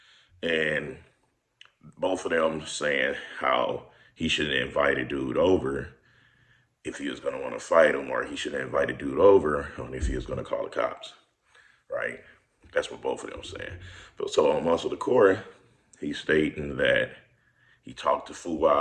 And both of them saying how he should invite a dude over if he was going to want to fight him, or he should invite a dude over on if he was going to call the cops, right? That's what both of them saying. But so on Muscle Decor, he's stating that he talked to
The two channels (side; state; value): both; identical; correlation 1.00